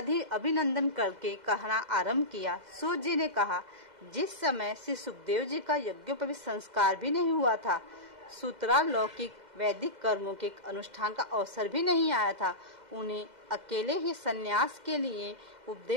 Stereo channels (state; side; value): late; left; 2.0 ms